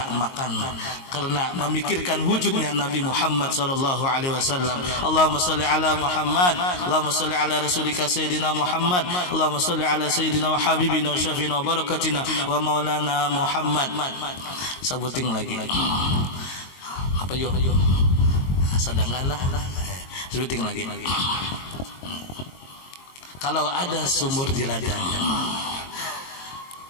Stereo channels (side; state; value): right; late; 22 ms